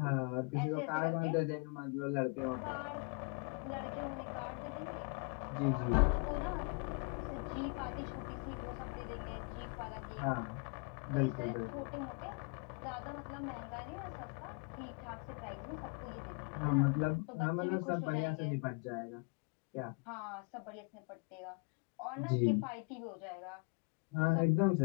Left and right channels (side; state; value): right; quieter; 33.2 dB